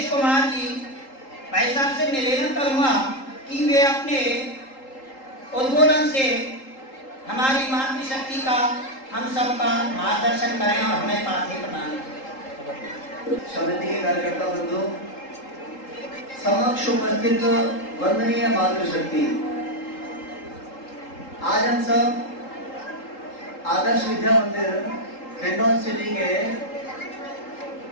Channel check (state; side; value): late; right; 3.8 ms